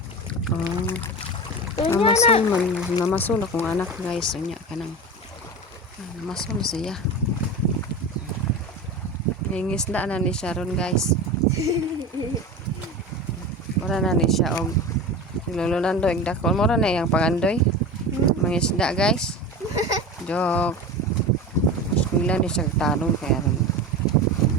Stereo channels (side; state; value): both; normal; correlation 0.28